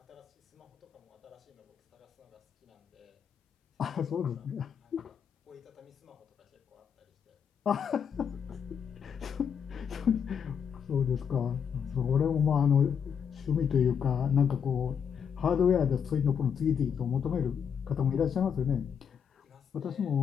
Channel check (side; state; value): right; quieter; 7.4 dB